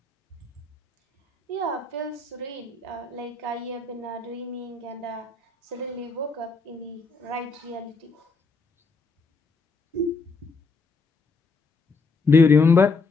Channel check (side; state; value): right; quieter; 4.0 dB